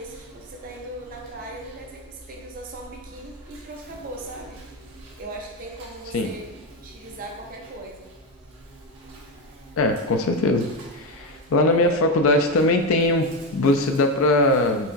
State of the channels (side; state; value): both; normal; correlation 0.12